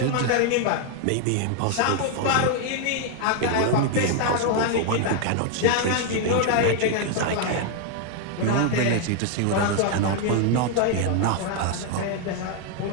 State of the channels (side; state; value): both; different; correlation 0.01